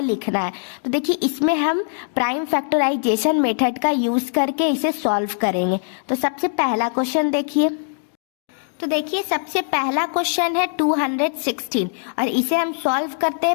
लिखना है। तो देखिए इसमें हम प्राइम फैक्टराइजेशन मेथड का यूज करके इसे सॉल्व करेंगे। तो सबसे पहला क्वेश्चन देखिए, तो देखिए सबसे पहला क्वेश्चन है 216 और इसे हम सॉल्व करते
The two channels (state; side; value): silent; right; digital silence